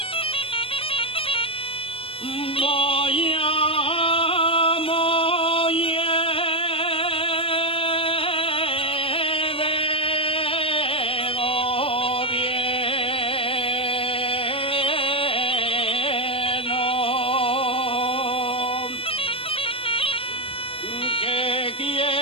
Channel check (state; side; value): late; right; 0.27 ms